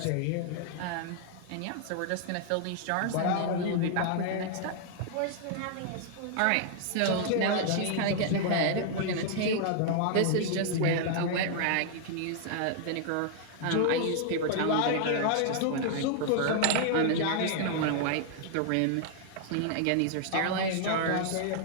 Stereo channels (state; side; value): different; both; correlation 0.00